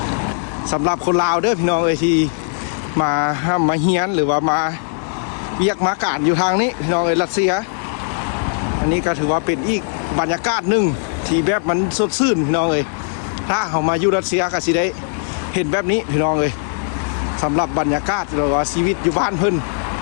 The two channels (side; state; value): right; silent; digital silence